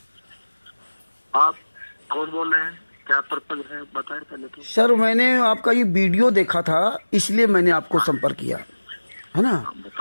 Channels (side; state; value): both; inverted; correlation -1.00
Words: आप कौन बोल रहे हैं, क्या पर्पज है बताएं पहले तो। सर मैंने आपका ये वीडियो देखा था, इसलिए मैंने आपको संपर्क किया, है ना? हाँ